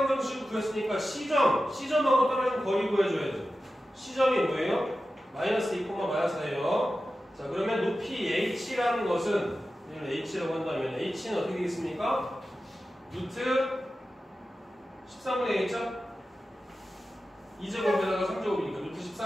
구했으니까 C점하고 떨어진 거리 구해줘야죠. C점이 뭐예요? 마이너스 2, 마이너스 4예요. 자, 그러면 높이 H라는 것은 이걸 H라고 한다면 H는 어떻게 되겠습니까? 루트 13분의 1죠? 2제곱에다가 3제곱이니까 루트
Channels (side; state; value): both; normal; correlation 0.93